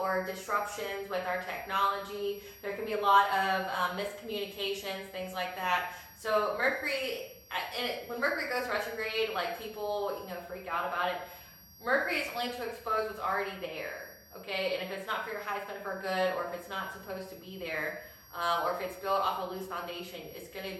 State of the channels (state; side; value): identical; both; correlation 1.00